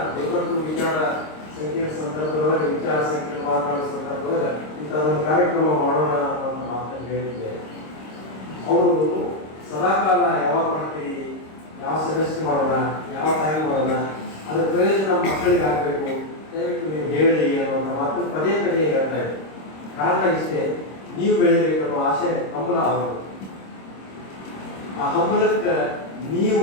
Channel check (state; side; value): late; right; 26 ms